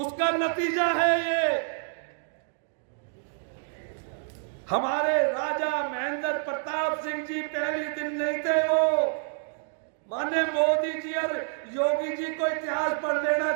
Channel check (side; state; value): left; silent; digital silence